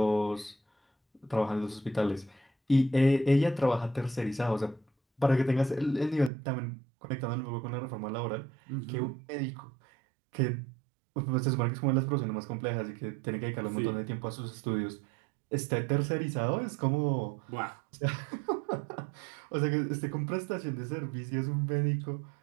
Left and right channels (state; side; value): drops out; left; at 6.3 s